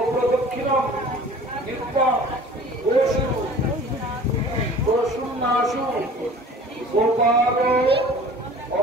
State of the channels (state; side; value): normal; both; correlation 0.45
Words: नित्यं गोषुन्नाशु गोपालो